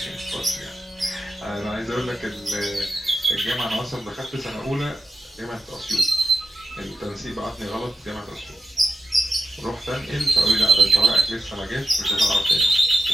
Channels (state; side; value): normal; both; correlation 0.90